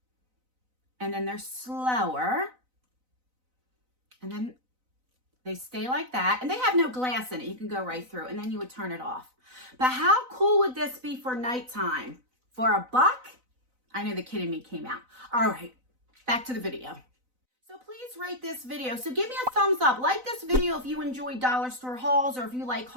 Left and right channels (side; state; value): left; late; 4.0 ms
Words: And then they're slower. And then they stay like that, and they have no glass in it. You can go right through, and then you would turn it off. But how cool would this be for nighttime? For $1? I know the kid in me came out. All right, back to the video. So please rate this video. So give me a thumbs up. Like this video if you enjoy dollar store hauls, or if you like